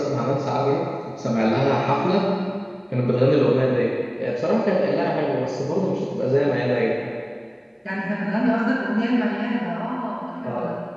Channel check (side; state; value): both; identical; correlation 1.00